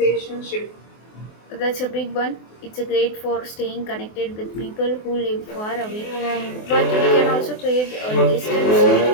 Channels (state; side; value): late; right; 24 ms